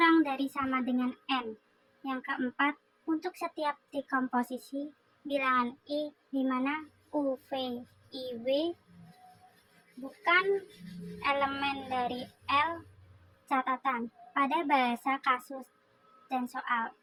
dari sama dengan N. Yang keempat, untuk setiap dekomposisi bilangan I di mana U, V, I, W bukan elemen dari L, catatan pada bahasa kasus dan soal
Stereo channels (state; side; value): identical; both; correlation 1.00